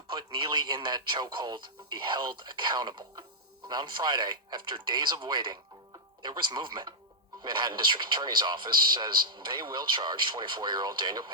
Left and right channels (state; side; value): normal; both; correlation -0.05